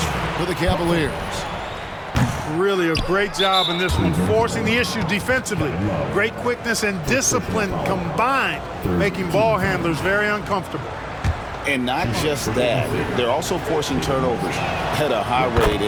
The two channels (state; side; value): identical; both; correlation 1.00